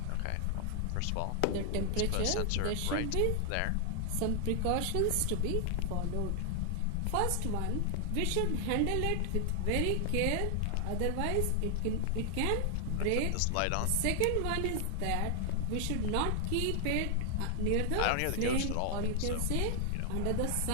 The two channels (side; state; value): both; different; correlation 0.00